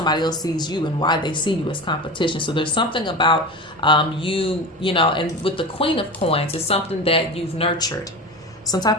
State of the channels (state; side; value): normal; both; correlation 0.28